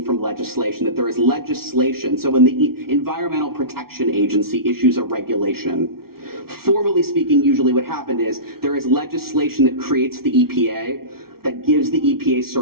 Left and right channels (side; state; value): left; late; 0.94 ms